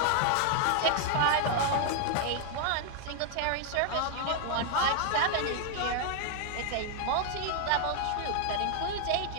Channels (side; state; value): both; different; correlation 0.00